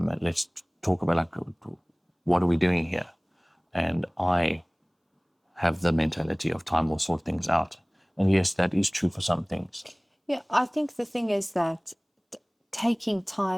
Let's talk about, like, what are we doing here? And I have the mentality of time will sort things out. And yes, that is true for some things. Yeah, I think the thing is that taking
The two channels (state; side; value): identical; both; correlation 1.00